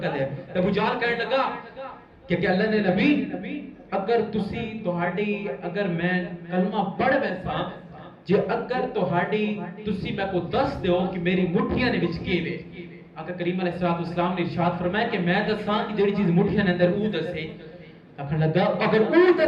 ہے ابو جہل کہنے لگا کہ اللہ نے نبی اگر تسی تہاڈی اگر میں کلمہ پڑھ ویسا جے اگر تہاڈی تسی میں کو دس دیو کہ میری مٹھیاں نے وچ کیوے آقا کریم علیہ السلام نے ارشاد فرمایا کہ میں دساں کہ جڑی چیز مٹھیاں نے اندر او دسے آخر لگا اگر او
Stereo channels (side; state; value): both; identical; correlation 1.00